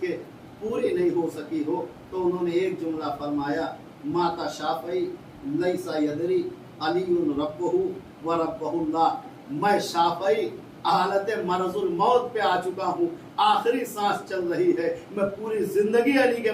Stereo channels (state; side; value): identical; both; correlation 1.00